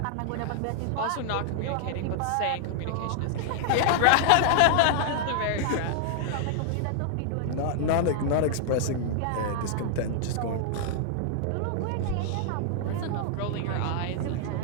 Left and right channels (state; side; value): different; both; correlation -0.01